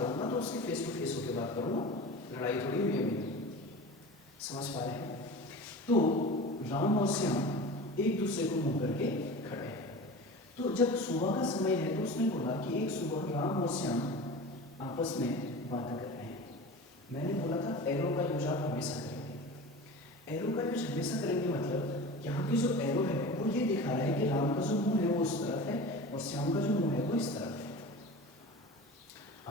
तो उसके फेस टू फेस होकर बात करूंगा, लड़ाई थोड़ी हुई है मेरी। समझ पा रहे हैं? तो राम और श्याम एक दूसरे को मुंह करके खड़े हैं। तो जब सुबह का समय है तो उसने बोला कि एक सुबह राम और श्याम आपस में बातें कर रहे हैं। मैंने बोला था एरो का यूज आप हमेशा करेंगे। एरो का यूज हमेशा करेंगे मतलब यहाँ पे जो एरो है वो ये दिखा रहा है कि राम का जो मुंह है वो उस तरफ है और श्याम का जो मुंह है वो इस तरफ है।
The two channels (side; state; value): both; normal; correlation 0.34